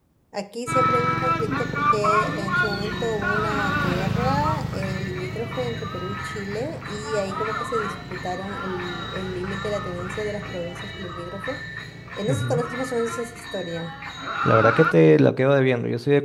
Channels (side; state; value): both; identical; correlation 1.00